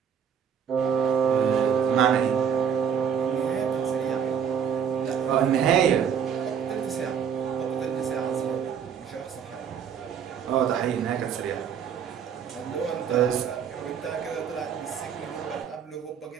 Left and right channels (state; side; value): quieter; left; 7.8 dB